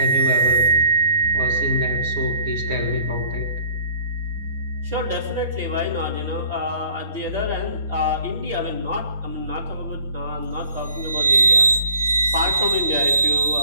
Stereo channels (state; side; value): inverted; both; correlation -0.54